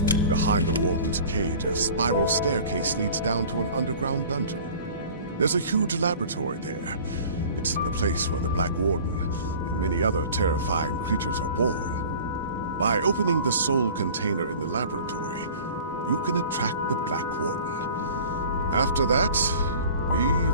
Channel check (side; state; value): both; inverted; correlation -0.44